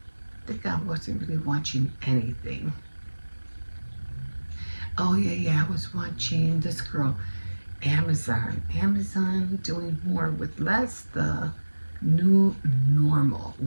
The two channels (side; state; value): both; inverted; correlation -1.00